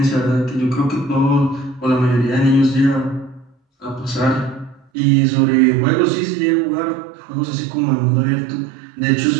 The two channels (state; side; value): drops out; left; at 4.8 s